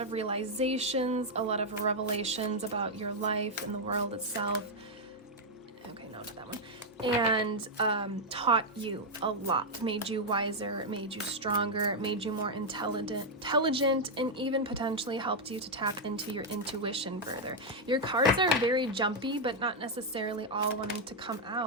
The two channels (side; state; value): both; normal; correlation -0.01